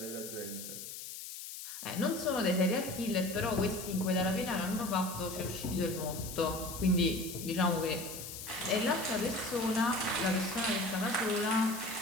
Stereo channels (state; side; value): noise; left; hiss, 9 dB below the sound